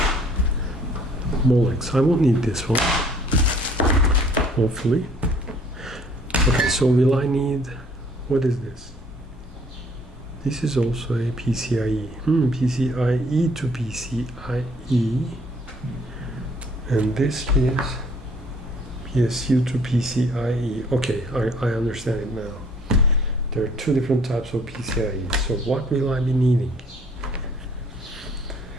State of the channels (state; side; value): normal; both; correlation 0.58